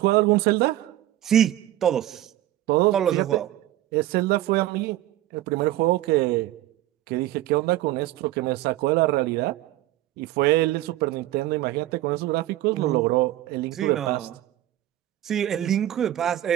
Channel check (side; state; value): left; quieter; 14.4 dB